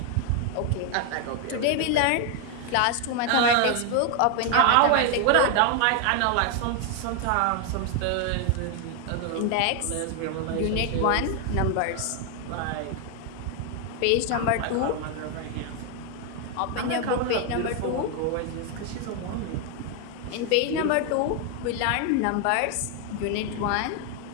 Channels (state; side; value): different; both; correlation 0.00